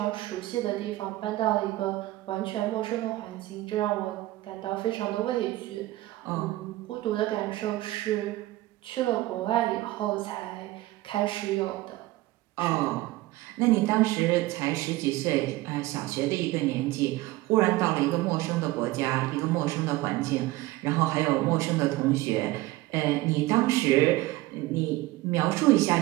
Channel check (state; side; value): quieter; left; 18.1 dB